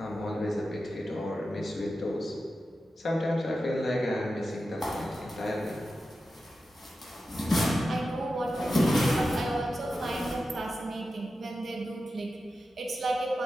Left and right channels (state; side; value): normal; both; correlation 0.92